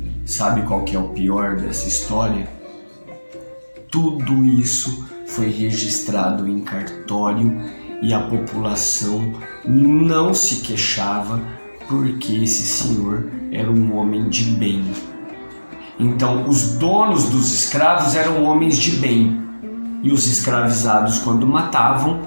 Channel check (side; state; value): both; inverted; correlation -1.00